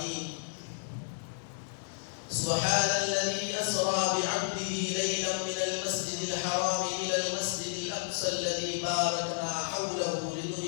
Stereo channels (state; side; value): silent; right; 55 dB below the other